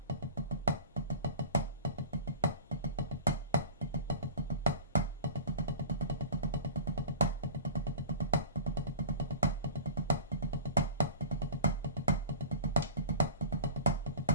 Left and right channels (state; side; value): inverted; both; correlation -0.39